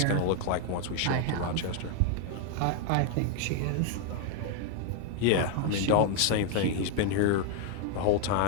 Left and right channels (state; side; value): different; both; correlation 0.00